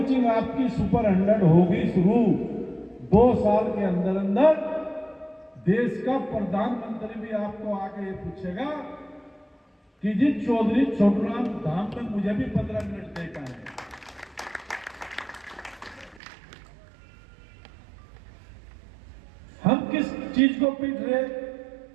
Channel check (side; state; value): left; drops out; at 16.2 s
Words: आपकी सुपर 100 होगी शुरू, 2 साल के अंदर अंदर देश का प्रधानमंत्री भी आपको आके ये पूछेगा कि जी चौधरी छोटूराम धाम में मुझे भी 15 मिनट देखा है। हम किस चीज को पीट रहे?